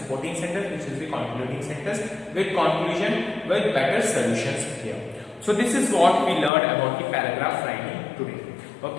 sentence, which is the concluding sentence, with conclusion, with better solutions here. So this is what we learned about the paragraph writing today.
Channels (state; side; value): drops out; right; at 6.5 s